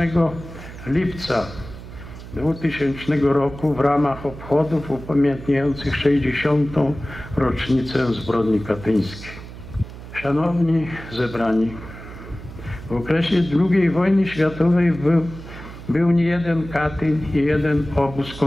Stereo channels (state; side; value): noise; right; hum, 14 dB below the sound